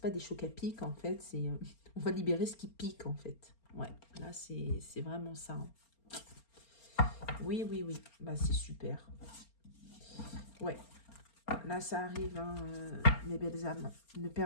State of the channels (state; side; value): late; right; 4.3 ms